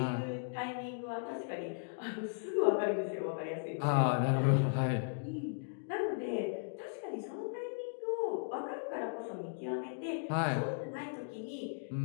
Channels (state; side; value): silent; right; digital silence